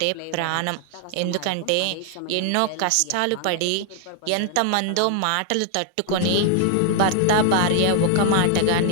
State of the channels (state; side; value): different; both; correlation 0.00